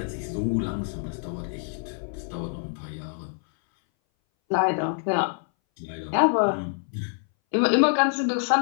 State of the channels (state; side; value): silent; right; 59 dB below the other